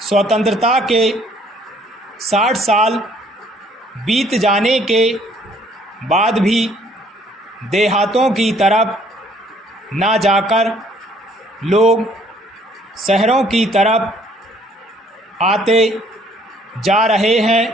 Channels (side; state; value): both; normal; correlation 0.61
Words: स्वतंत्रता के 60 साल बीत जाने के बाद भी देहातों की तरफ ना जाकर लोग शहरों की तरफ आते जा रहे